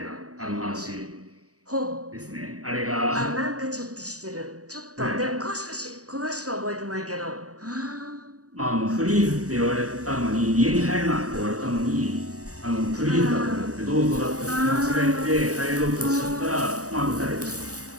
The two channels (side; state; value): left; late; 0.66 ms